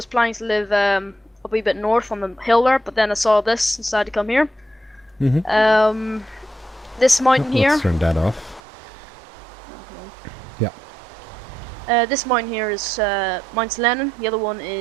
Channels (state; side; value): drops out; left; at 8.6 s